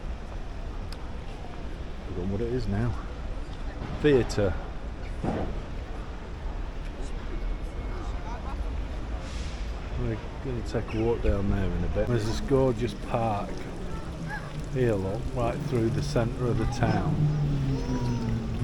know what it is now. Theatre. We're going to take a walk down there in a bit. There's this gorgeous park here, look, right through the centre of the town.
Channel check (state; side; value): identical; both; correlation 1.00